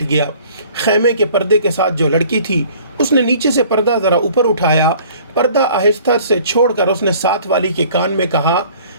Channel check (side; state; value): both; inverted; correlation -0.52